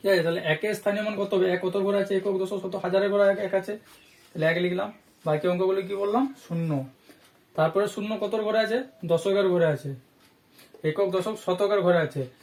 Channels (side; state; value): both; identical; correlation 1.00